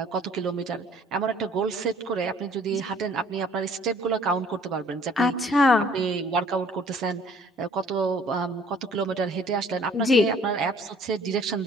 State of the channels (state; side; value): normal; both; correlation 0.56